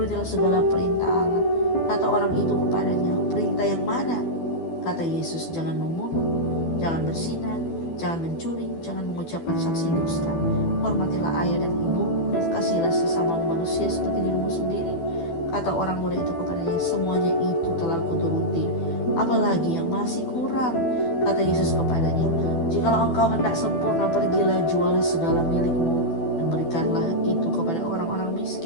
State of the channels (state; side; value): late; right; 12 ms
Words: segala perintah Allah." Kata orang itu kepadanya, "Perintah yang mana?" Kata Yesus, "Jangan membunuh, jangan berzina, jangan mencuri, jangan mengucapkan saksi dusta, hormatilah ayah dan ibu, dan kasihilah sesama manusia seperti dirimu sendiri." Kata orang muda itu kepadanya, "Semuanya itu telah kuturuti. Apalagi yang masih kurang?" Kata Yesus kepadanya, "Jikalau engkau hendak sempurna, pergilah, jualah segala milikmu dan berikanlah itu kepada orang-orang